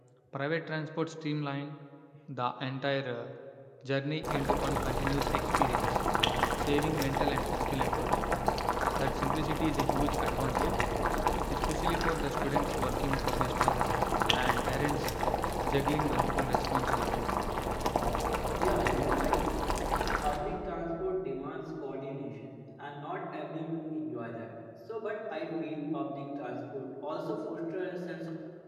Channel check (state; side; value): identical; both; correlation 1.00